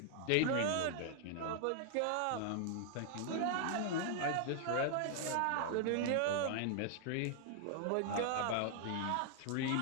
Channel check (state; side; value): different; both; correlation 0.00